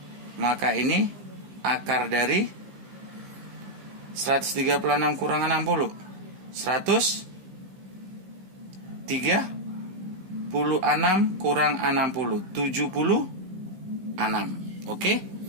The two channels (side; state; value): left; late; 15 ms